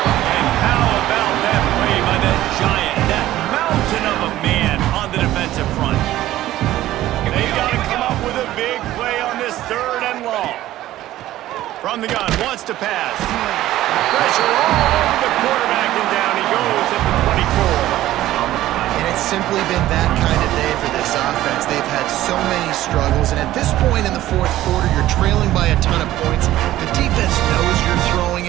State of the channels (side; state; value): left; quieter; 14.6 dB